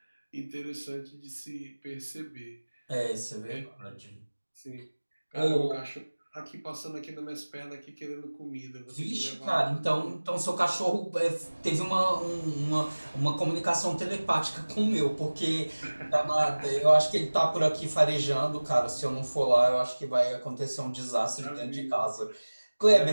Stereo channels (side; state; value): both; inverted; correlation -1.00